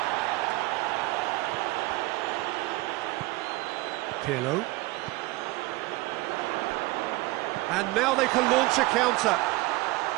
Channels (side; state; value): left; quieter; 20.5 dB